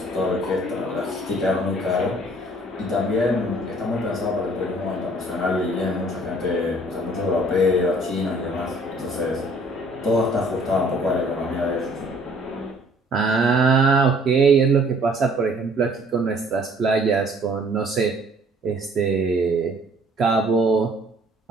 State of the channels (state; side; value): normal; both; correlation 0.57